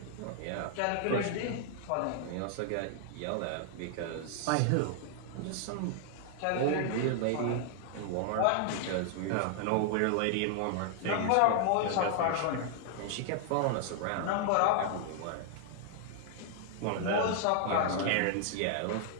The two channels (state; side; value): different; both; correlation 0.00